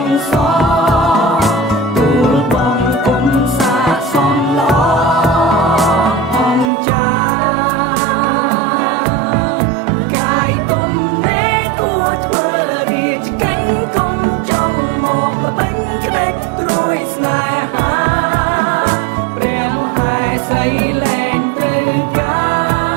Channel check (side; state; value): left; drops out; at 6.7 s